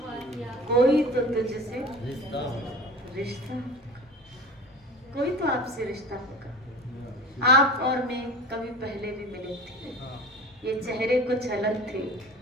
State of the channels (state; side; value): normal; both; correlation 0.37